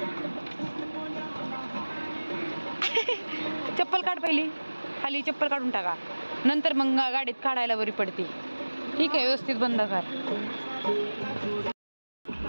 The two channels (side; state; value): both; inverted; correlation -1.00